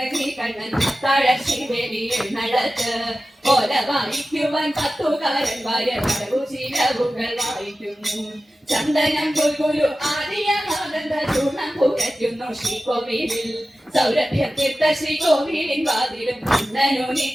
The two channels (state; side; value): normal; both; correlation 0.95